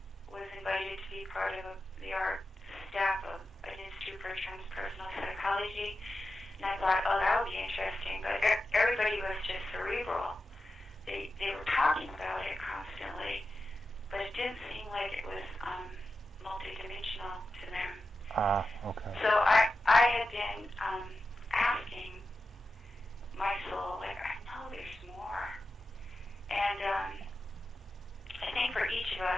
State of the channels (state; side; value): normal; both; correlation 0.91